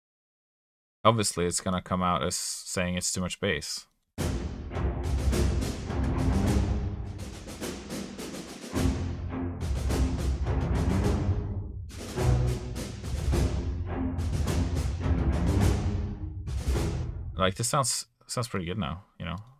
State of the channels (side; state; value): both; identical; correlation 1.00